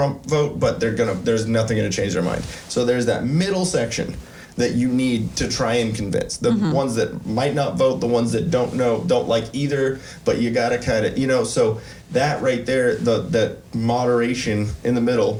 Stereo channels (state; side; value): identical; both; correlation 1.00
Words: vote, but there's nothing gonna change their mind. So there's that middle section that you need to try and convince. The ones that might not vote, the ones that don't like either, but you gotta kind of, you know, so that right there, that moderation in the